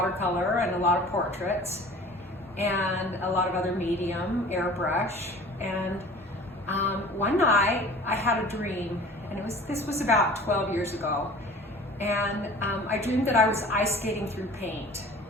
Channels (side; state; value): both; normal; correlation 0.44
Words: and a lot of portraits and a lot of other medium, airbrush. And one night I had a dream, and this was about 12 years ago, and I dreamed that I was ice skating through paint,